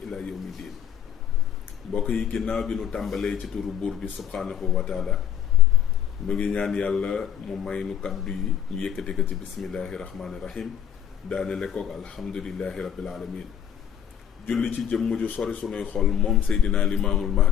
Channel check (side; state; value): right; quieter; 9.4 dB